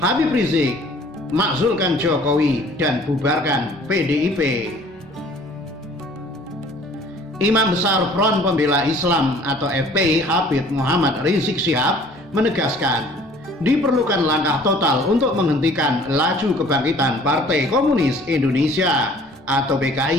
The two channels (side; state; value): both; normal; correlation 0.52